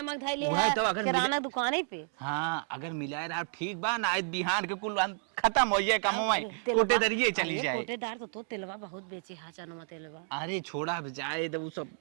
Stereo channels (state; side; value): silent; left; 57 dB below the other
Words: धाई ले वही तो अगर किराना दुकान पे। हाँ अगर मिलाए रहा ठीक बा ना, आज बिहान के कुल खत्म हो जाए काम हमारी कोटेदारिये चली जाए। कोटेदार तो तिलवा बहुत बेचे हा चनुमा तिलवा। अरे छोड़ा अब जाए तो वो सब